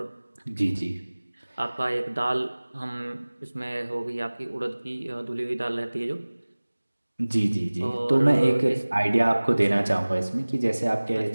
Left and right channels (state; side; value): inverted; both; correlation -1.00